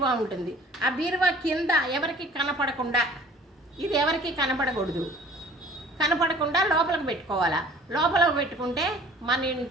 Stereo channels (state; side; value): normal; both; correlation 0.50